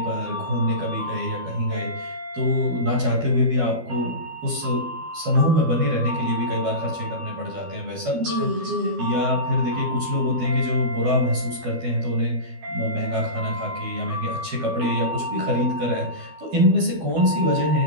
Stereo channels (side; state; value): left; late; 12 ms